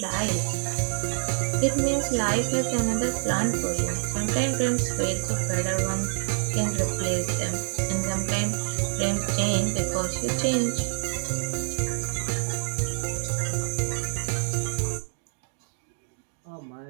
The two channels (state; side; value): silent; left; digital silence